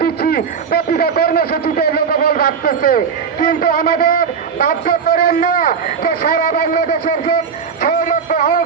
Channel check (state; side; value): quieter; left; 6.3 dB